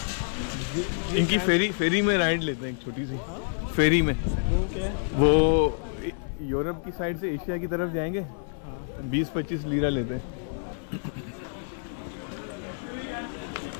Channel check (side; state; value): right; silent; digital silence